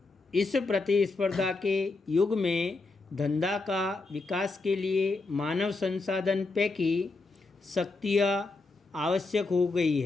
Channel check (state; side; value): quieter; right; 3.6 dB